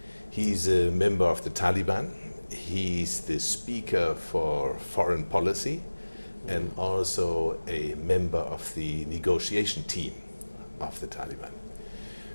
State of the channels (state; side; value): inverted; both; correlation -1.00